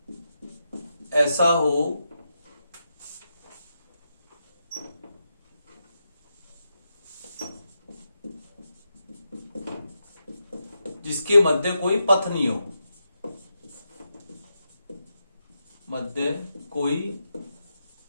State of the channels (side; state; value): both; inverted; correlation -0.86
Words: ऐसा हो जिसके मध्य कोई पथ नहीं हो, मध्य कोई